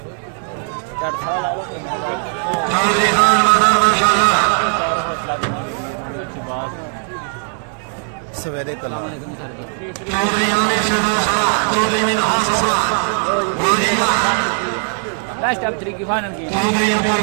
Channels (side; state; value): left; silent; 56 dB below the other